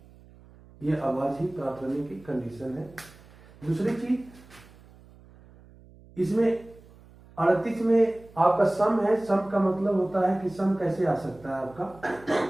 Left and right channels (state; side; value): noise; right; hum, 24 dB below the sound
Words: ये अभाज्य प्राप्त होने की कंडीशन है। दूसरी चीज, इसमें 38 में आपका सम है, सम का मतलब होता है कि सम कैसे आ सकता है आपका